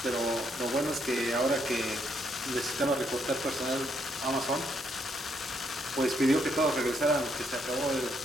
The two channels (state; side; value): normal; both; correlation 0.74